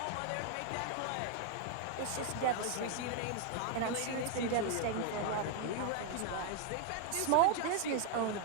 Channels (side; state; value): both; different; correlation 0.00